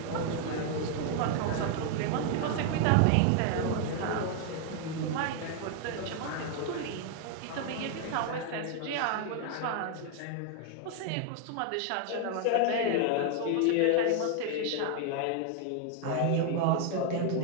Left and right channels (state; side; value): different; both; correlation 0.00